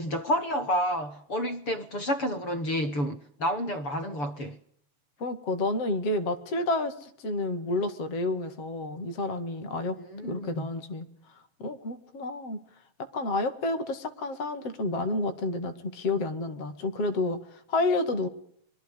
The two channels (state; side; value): late; right; 6.9 ms